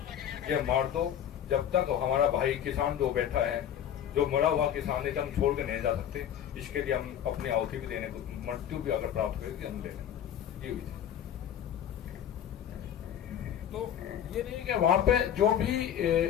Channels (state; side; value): quieter; right; 9.8 dB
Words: ये मार दो, जब तक हमारा भाई किसान जो बैठा है, जो मरा हुआ किसान है, हम छोड़ के नहीं जा सकते। इसके लिए हम अपनी आहुति भी देने को, मृत्यु भी अगर प्राप्त करेगी हम ले लेंगे। ये हुई थी। तो ये नहीं कि वहां पे जो भी